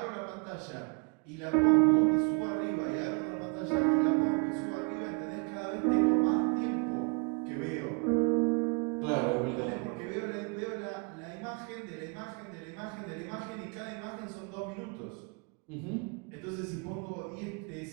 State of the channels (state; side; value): quieter; left; 35.7 dB